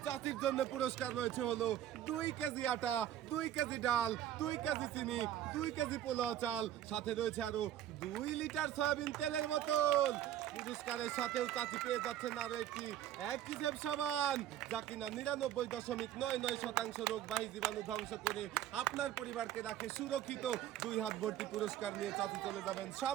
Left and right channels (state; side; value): quieter; left; 11.8 dB